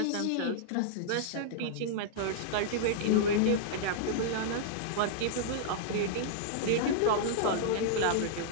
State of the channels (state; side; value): different; both; correlation -0.01